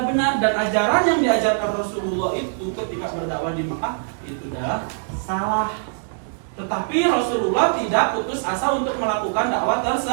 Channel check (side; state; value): left; silent; digital silence